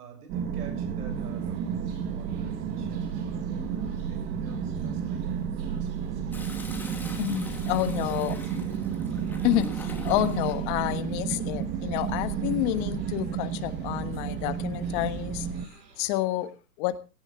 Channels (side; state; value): both; normal; correlation 0.13